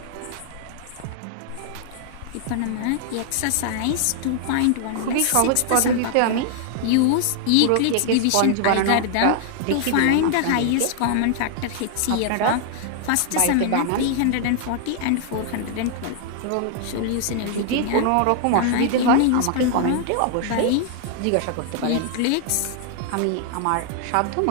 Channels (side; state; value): both; different; correlation 0.00